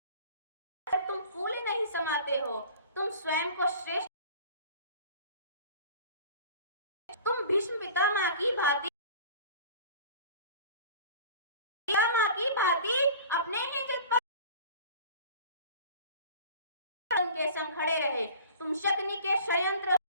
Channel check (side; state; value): both; inverted; correlation -0.42